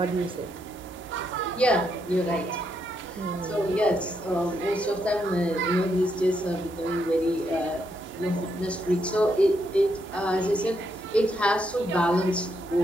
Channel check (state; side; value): normal; both; correlation 0.78